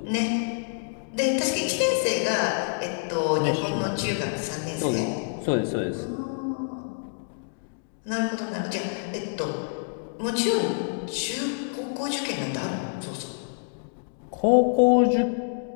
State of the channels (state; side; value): silent; right; digital silence